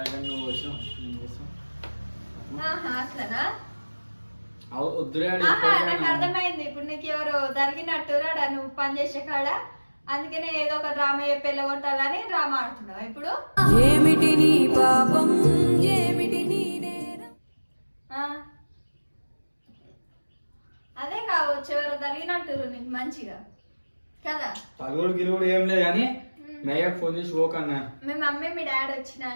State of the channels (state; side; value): inverted; both; correlation -1.00